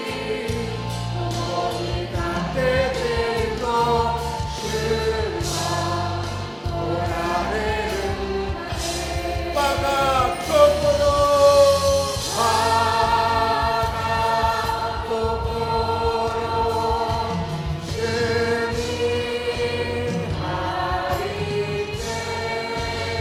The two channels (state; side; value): identical; both; correlation 1.00